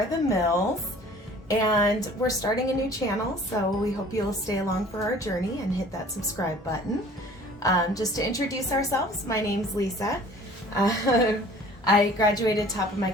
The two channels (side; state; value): both; normal; correlation 0.49